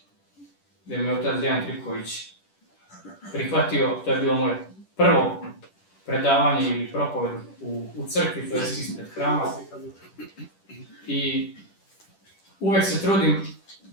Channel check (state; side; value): late; right; 10 ms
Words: gdje me otac Dejan Tripković prihvatio, to je bilo moje prvo predavanje ili propoved u crkvi, to je ispred hrama. I uvek se trudim